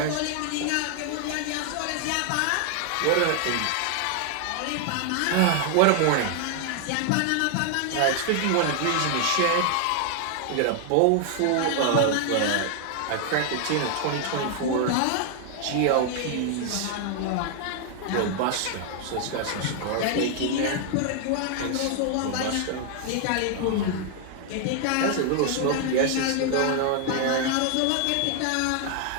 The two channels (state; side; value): different; both; correlation 0.00